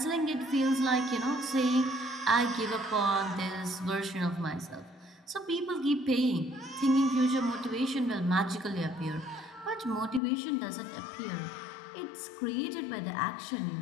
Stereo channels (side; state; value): right; drops out; at 10.2 s